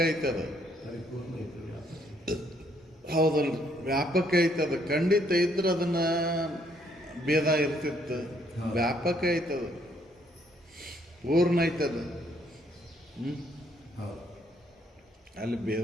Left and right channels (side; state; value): both; normal; correlation 0.69